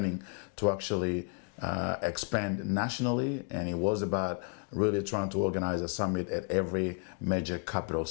to actually expand nationally. And it was about really trying to organize a summit at every major capital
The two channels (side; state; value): right; quieter; 37.3 dB